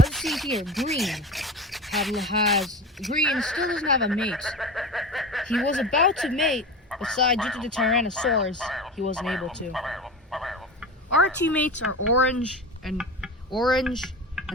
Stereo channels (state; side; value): normal; both; correlation 0.29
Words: see here, Green still doesn't have a mate. He was about to mate, but due to the Tyrannosaurus, he wasn't able to. Our teammates are Orange and